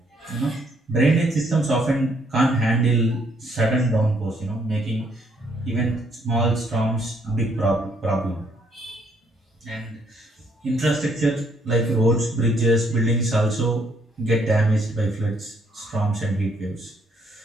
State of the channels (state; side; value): normal; both; correlation 0.69